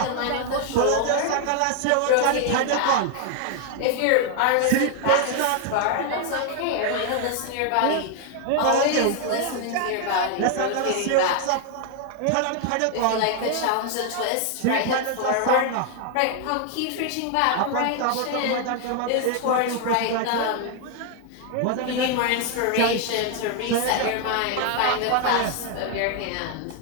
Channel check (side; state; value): both; different; correlation 0.00